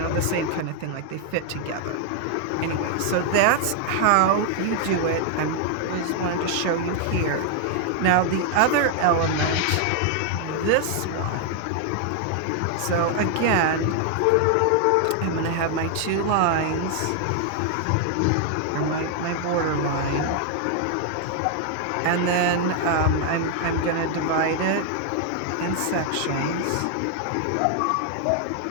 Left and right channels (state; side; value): different; both; correlation 0.00